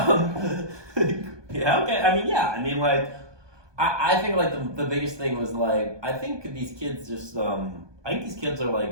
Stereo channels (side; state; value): left; late; 1.2 ms